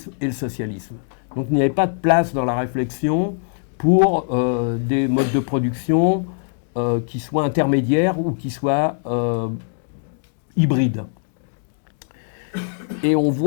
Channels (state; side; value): silent; right; digital silence